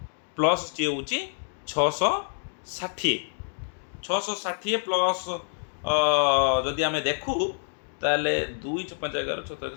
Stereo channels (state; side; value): silent; right; digital silence